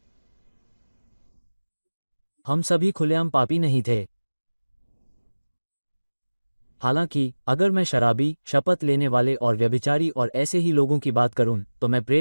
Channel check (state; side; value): inverted; both; correlation -1.00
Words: हम सभी खुलेआम पापी नहीं थे। हालांकि अगर मैं शराबी, शपथ लेने वाले और व्यभिचारी और ऐसे ही लोगों की बात करूं तो मैं